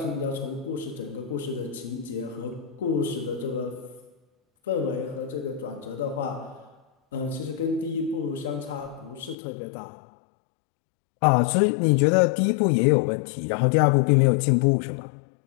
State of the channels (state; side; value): drops out; right; at 9.3 s